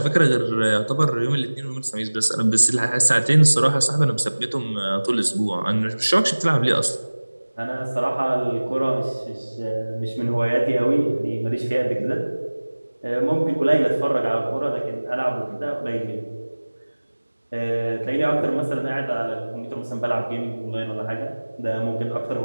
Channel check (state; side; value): inverted; both; correlation -1.00